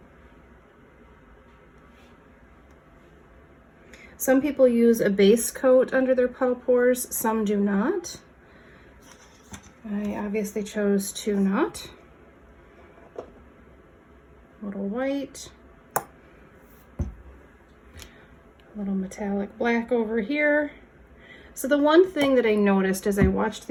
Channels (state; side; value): identical; both; correlation 1.00